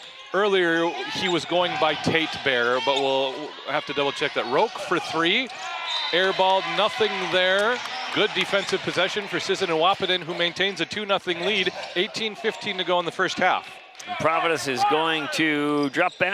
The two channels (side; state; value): both; identical; correlation 1.00